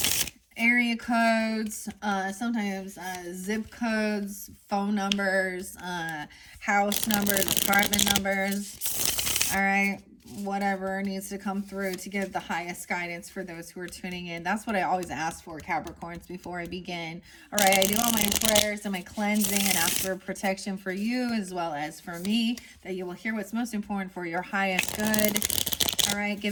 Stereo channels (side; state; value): both; identical; correlation 1.00